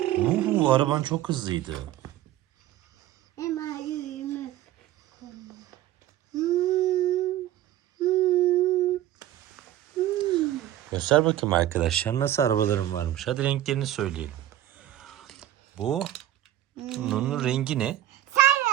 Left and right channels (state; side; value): quieter; left; 13.2 dB